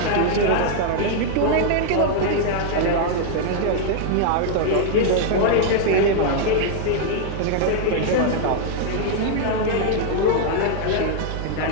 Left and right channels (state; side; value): different; both; correlation 0.00